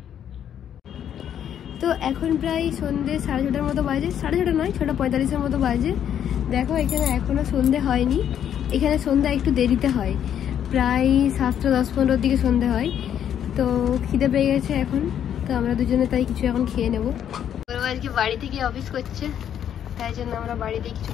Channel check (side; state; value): right; quieter; 9.5 dB